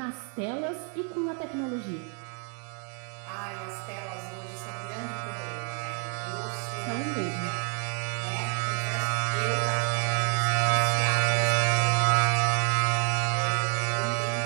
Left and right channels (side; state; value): left; quieter; 36.7 dB